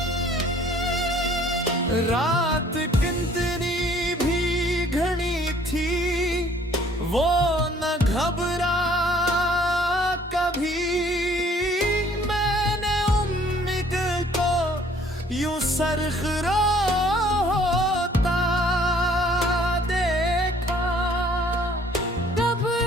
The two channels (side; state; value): both; normal; correlation 0.58